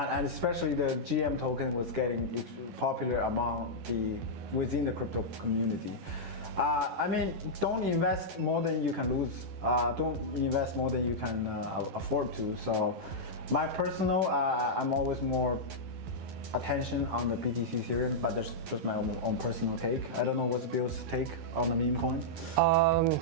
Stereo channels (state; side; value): late; left; 12 ms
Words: especially the GM token was getting popular within the crypto community. Don't invest more than you can lose. Don't invest more than you can afford to. So my personal, I'm always more attention on the BTC Ethereum, but that's just my own personal take. I don't know what's Bill's take on the meme coin.